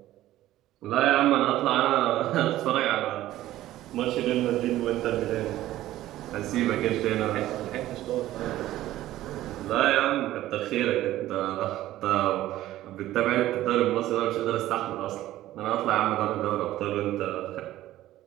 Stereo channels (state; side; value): quieter; left; 14.6 dB